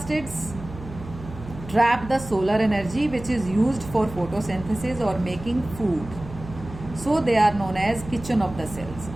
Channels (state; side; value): noise; right; hum, 14 dB below the sound